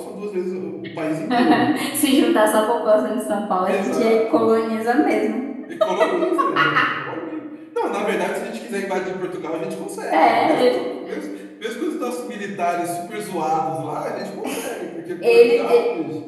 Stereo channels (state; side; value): identical; both; correlation 1.00